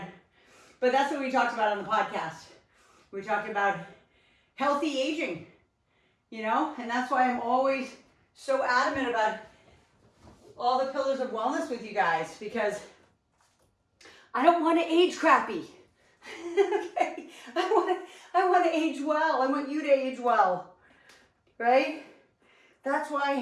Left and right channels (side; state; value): both; identical; correlation 1.00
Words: But that's what we talked about on the podcast. We talked about healthy aging, and that's why I'm always so adamant about all the pillars of wellness with you guys, because I don't want to age crappy. Okay? I want to age well. I want you to age well, right? That's